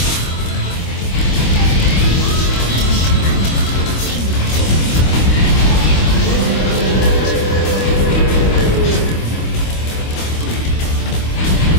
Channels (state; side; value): late; right; 25 ms